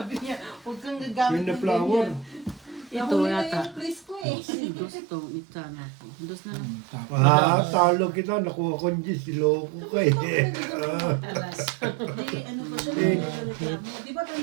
niya, huwag kang gagamit Yung na ng flower. ganyan. Ito Nahuli na yata. yung please ko eh. Dos to, ita na ako. Dos na lang. Talo kita. Nakuha ko yung Diyos. Siloko ka eh. Di, ano pa siya, nagreklamo. Di ba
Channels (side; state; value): left; drops out; at 4.2 s